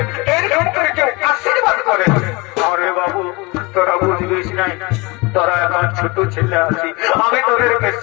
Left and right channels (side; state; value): right; quieter; 25.1 dB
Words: এরকম করে কেউ আশীর্বাদ করে আরে বাবু তোরা বুঝবিস নাই তোরা এখন ছোট ছেলে আছি আমি তোদেরকে